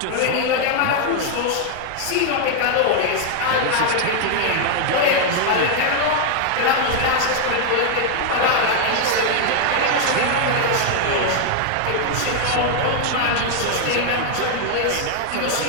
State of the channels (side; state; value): both; different; correlation 0.00